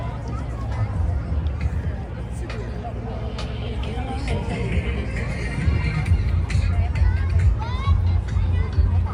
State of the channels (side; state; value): both; identical; correlation 1.00